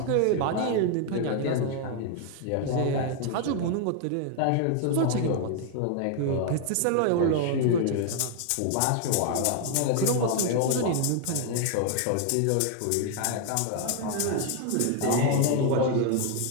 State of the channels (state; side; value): different; both; correlation 0.00